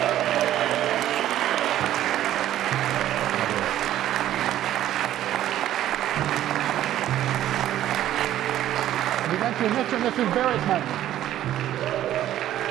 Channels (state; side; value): quieter; left; 12.6 dB